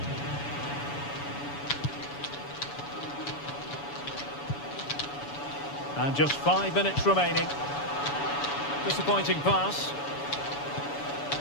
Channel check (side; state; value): right; late; 7.0 ms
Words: And just 5 minutes remaining. Disappointing pass.